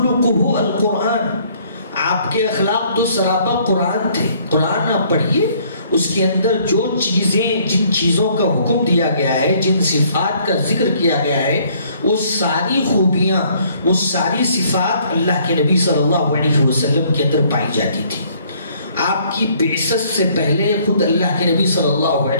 القرآن، آپ کے اخلاق تو سراپا قرآن تھے۔ قرآن آپ پڑھیے، اس کے اندر جو چیزیں، جن چیزوں کا حکم دیا گیا ہے، جن صفات کا ذکر کیا گیا ہے، وہ ساری خوبیاں، وہ ساری صفات اللہ کے نبی صلی اللہ علیہ وسلم کے اندر پائی جاتی تھی۔ آپ کی بعثت سے پہلے خود اللہ کے نبی صلی اللہ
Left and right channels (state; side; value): inverted; both; correlation -0.62